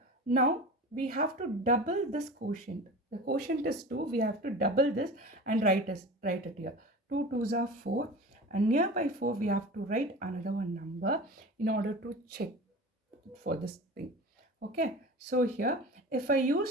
Now we have to double this quotient. The quotient is 2. We have to double this and write it here. 2 2s are 4, and nearby 4 we have to write another one number in order to check for this thing. Okay, so here if I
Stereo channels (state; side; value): normal; both; correlation 0.34